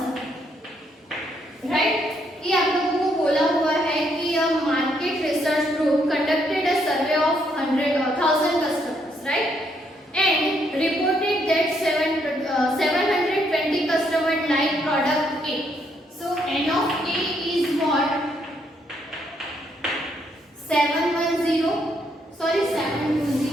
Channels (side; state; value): both; normal; correlation 0.73